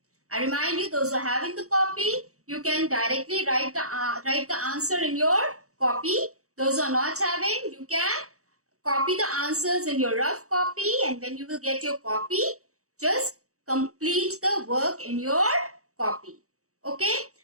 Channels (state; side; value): late; left; 0.65 ms